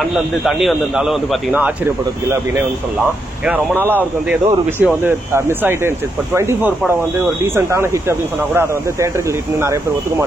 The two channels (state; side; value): normal; both; correlation 0.81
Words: வந்து தண்ணி வந்திருந்தாலும் வந்து பார்த்தீங்கன்னா ஆச்சரியப்படுறதுக்கு இல்லை அப்படின்னே வந்து சொல்லலாம். ஏன்னா ரொம்ப நாளாக அவருக்கு வந்து ஏதோ ஒரு விஷயம் வந்து மிஸ் ஆகிட்டே இருந்துச்சு. இப்போ 24 படம் வந்து ஒரு டீசென்டான ஹிட் அப்படின்னு சொன்னா கூட அதை வந்து தேட்டரிக்கல் ஹிட்னு நிறைய பேர் ஒத்துக்க